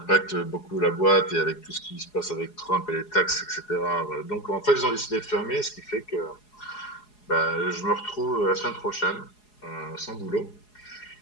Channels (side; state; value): right; late; 4.8 ms